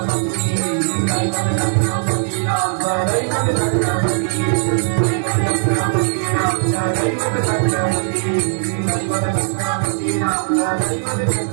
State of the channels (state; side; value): silent; left; 67 dB below the other